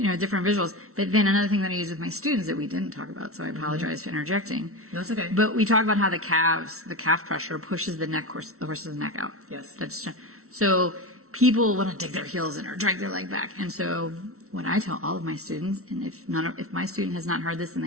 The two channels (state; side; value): late; left; 0.63 ms